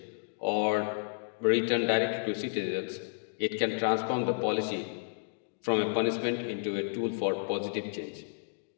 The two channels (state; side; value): silent; right; digital silence